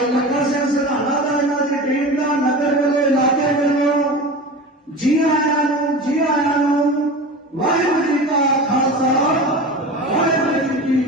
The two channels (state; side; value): normal; both; correlation 0.31